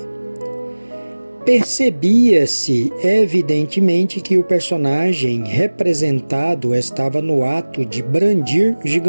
Percebia-se evidentemente que o personagem representado estava no ato de brandir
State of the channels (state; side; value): inverted; both; correlation -1.00